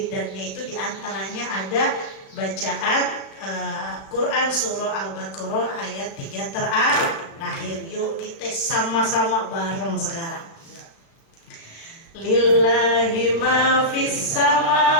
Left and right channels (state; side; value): late; right; 36 ms